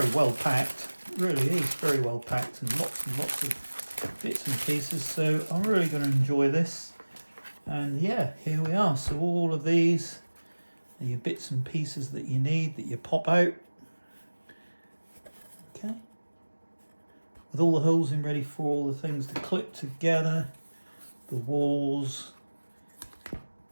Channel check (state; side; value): inverted; both; correlation -1.00